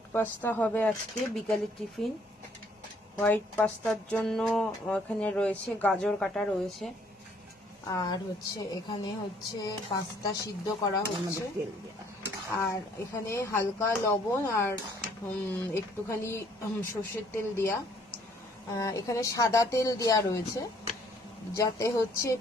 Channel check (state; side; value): normal; both; correlation 0.63